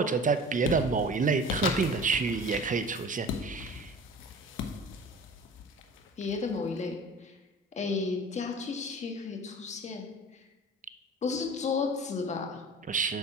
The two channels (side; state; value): both; normal; correlation 0.40